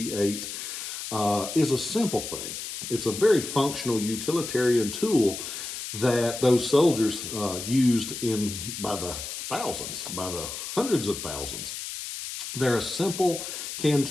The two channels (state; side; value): noise; left; hiss, 7 dB below the sound